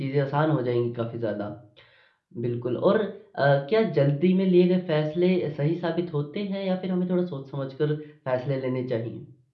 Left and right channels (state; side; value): identical; both; correlation 1.00